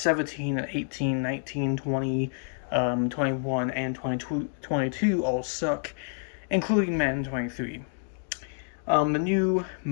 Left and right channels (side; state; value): right; silent; 59 dB below the other